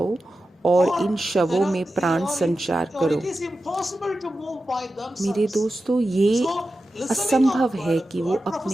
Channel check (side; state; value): both; normal; correlation 0.92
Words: और इन शवों में प्राण संचार करो। मेरे दोस्तों, ये असंभव है कि वो